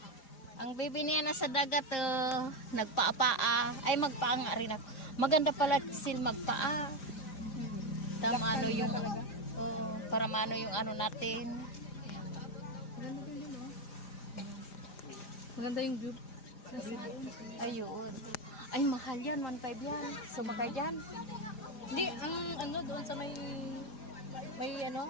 Ang baby niya nasa dagat, nagpaa-paa. Ay, magpaa nga rin ako. Maganda pala sil magpaa. Tama ano yung, para maano yung ano natin. Maganda yung view. Ayun. Ay, mahal yan. 1.5 yan. Sumakay dyan. Hindi, ang ano doon sa may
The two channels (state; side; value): late; right; 5.0 ms